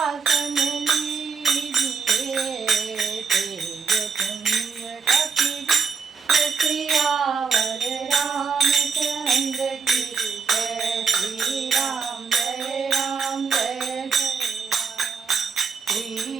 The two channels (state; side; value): quieter; left; 5.3 dB